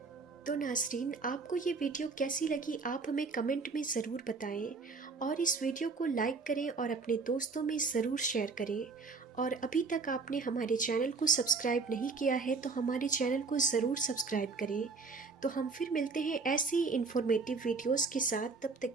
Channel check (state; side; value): quieter; left; 4.4 dB